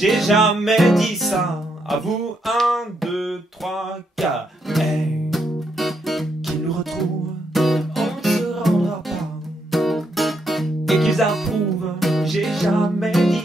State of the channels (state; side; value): normal; both; correlation 0.78